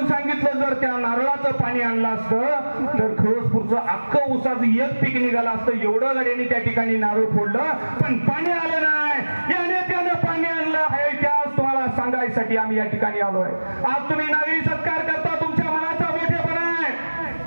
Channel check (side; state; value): both; inverted; correlation -1.00